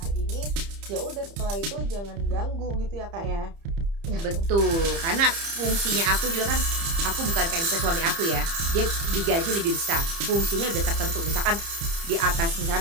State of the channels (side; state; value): left; late; 30 ms